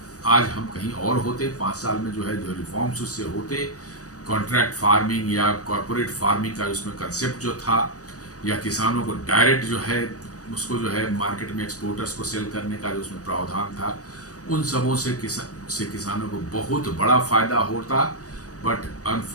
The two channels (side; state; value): right; late; 0.66 ms